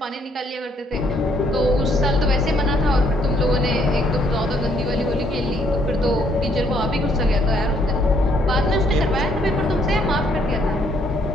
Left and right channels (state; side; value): normal; both; correlation 0.68